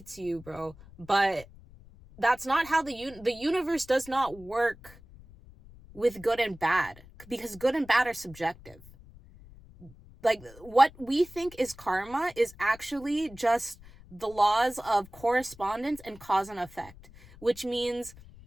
to you, bro, but that's not how the universe does not work with good and bad, because good and bad are subjective. Like, what we think is karma is actually just the laws of correspondence and cause and effect, which means,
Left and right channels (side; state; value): left; noise; rumble, 21 dB below the sound